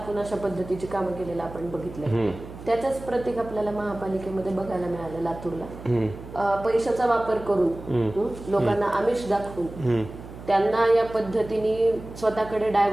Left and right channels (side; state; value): right; noise; hum, 14 dB below the sound